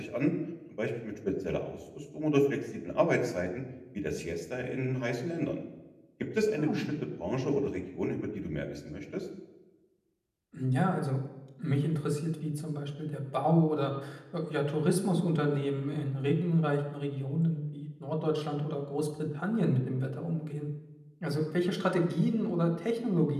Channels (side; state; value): both; identical; correlation 1.00